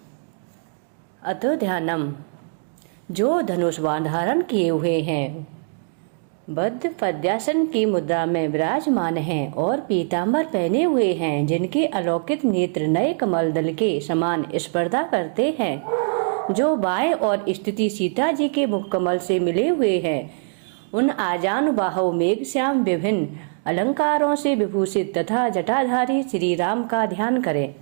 अतो ध्यानम। जो धनुष बाण धारण किए हुए हैं, बद्ध पद्यासन की मुद्रा में विराजमान हैं और पीतांबर पहने हुए हैं, जिनके अलौकिक नेत्र नए कमल दल के समान स्पर्धा करते हैं, जो बाएं और स्थिति सीता जी के मुख कमल से मिले हुए हैं, उन आजानुबाहु मेघश्याम विभिन्न अलंकारों से विभूषित तथा जटाधारी श्री राम का ध्यान करें।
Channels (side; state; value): left; silent; 64 dB below the other